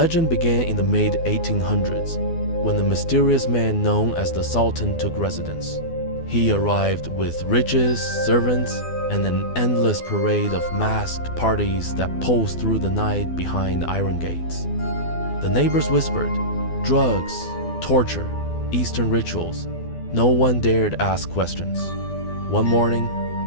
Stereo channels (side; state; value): right; late; 12 ms